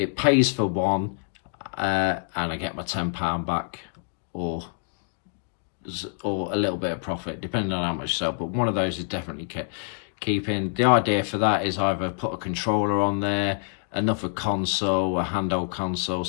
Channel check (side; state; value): right; silent; 60 dB below the other